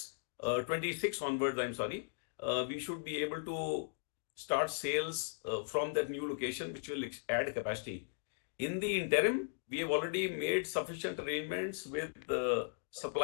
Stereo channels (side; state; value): right; silent; digital silence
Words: 26 onwards, I'm sorry, we should be able to start sales from that new location, which will add capacity. In the interim, we have already made sufficient arrangements with the